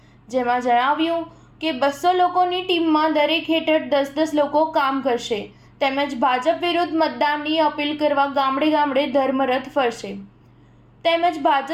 જેમાં જણાવ્યું કે 200 લોકોની ટીમમાં દરેક હેઠળ 10-10 લોકો કામ કરશે તેમજ ભાજપ વિરુદ્ધ મતદાનની અપીલ કરવા ગામડે ગામડે ધર્મરથ ફરશે તેમજ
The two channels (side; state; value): both; identical; correlation 1.00